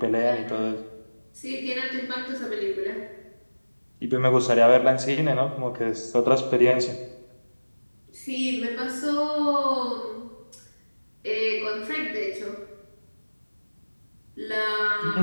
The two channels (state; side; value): inverted; both; correlation -1.00